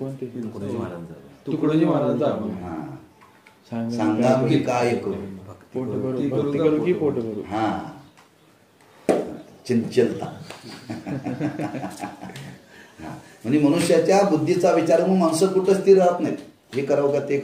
तुकडोजी महाराजांचा हा, सांगा सांगा मी काय करू. पोट भरू, भक्ती करू की पोट भरू. हा, चंचलता. म्हणजे मनुष्याच्या बुद्धीचा विचार मग माणसं कुठं स्थिर राहत नाहीत. हे करावं का ते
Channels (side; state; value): both; identical; correlation 1.00